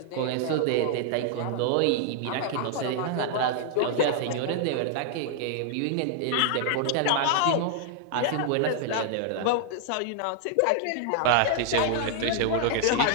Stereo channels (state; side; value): different; both; correlation 0.00